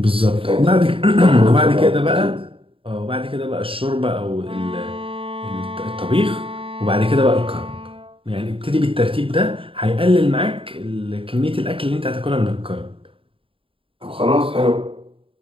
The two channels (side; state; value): left; late; 0.26 ms